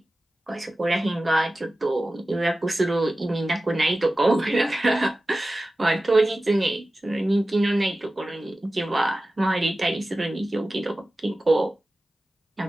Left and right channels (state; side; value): normal; both; correlation 0.95